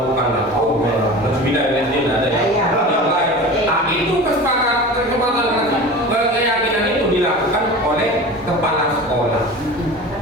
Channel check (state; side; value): normal; both; correlation 0.34